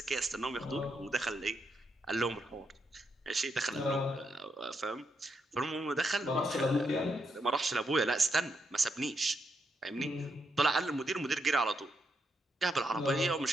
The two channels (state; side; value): normal; both; correlation 0.81